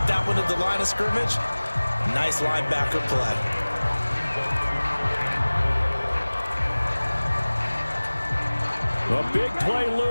that one at the line of scrimmage. Nice linebacker play. A big play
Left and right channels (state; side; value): inverted; both; correlation -1.00